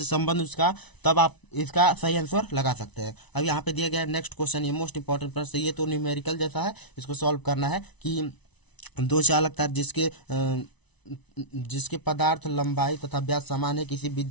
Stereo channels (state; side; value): late; right; 1.0 ms